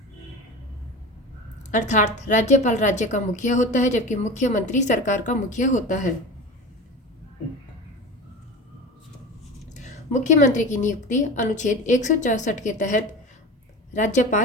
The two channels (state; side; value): normal; both; correlation 0.31